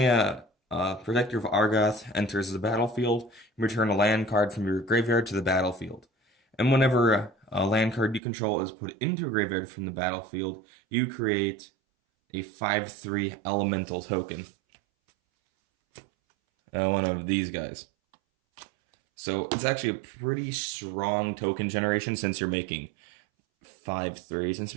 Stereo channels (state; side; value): drops out; left; at 8.2 s